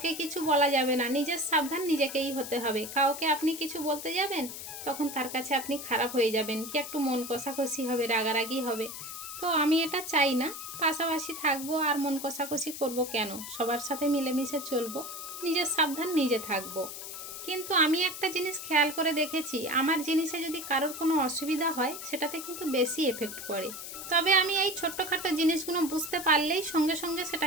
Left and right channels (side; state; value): left; noise; hiss, 9 dB below the sound